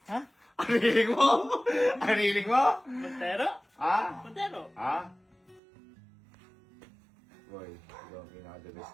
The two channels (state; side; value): drops out; left; at 5.6 s